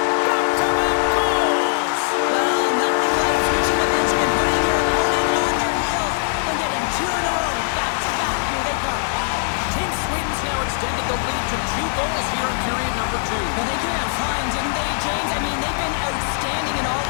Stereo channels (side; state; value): right; silent; 65 dB below the other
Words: back-to-back goals! Well, nothing like switching momentum and putting your opponent on their heels and getting two in a row, back-to-back. Here they come. Team Sweden's now extended the lead to 2 goals here in period number 2. Well, they came out flying, didn't they, James? I mean, they've been outstanding in all